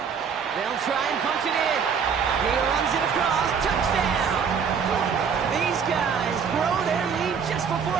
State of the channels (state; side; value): quieter; left; 6.5 dB